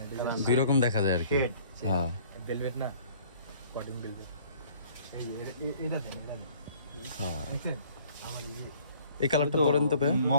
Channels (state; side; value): inverted; both; correlation -0.55